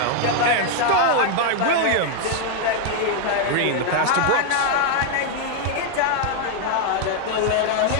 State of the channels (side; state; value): both; different; correlation 0.00